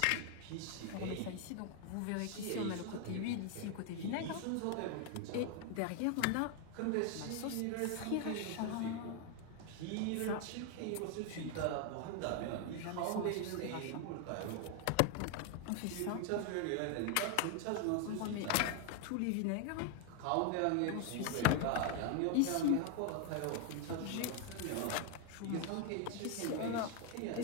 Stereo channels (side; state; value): both; different; correlation 0.00